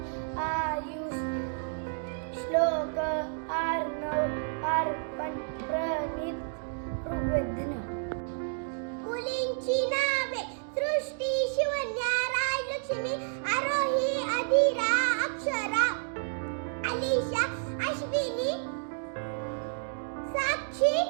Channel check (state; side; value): silent; left; digital silence